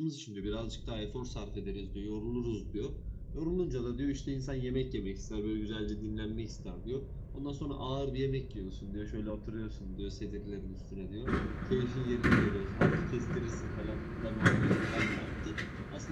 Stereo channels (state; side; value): identical; both; correlation 1.00